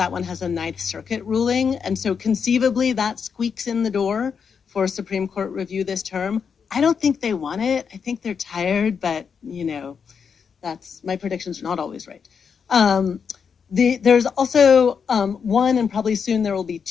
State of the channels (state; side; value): quieter; right; 6.4 dB